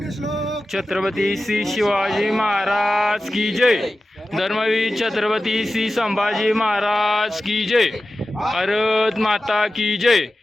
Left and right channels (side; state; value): both; normal; correlation 0.94